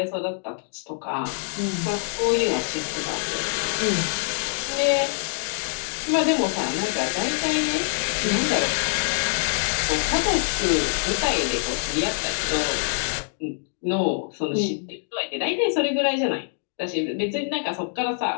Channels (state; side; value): silent; right; digital silence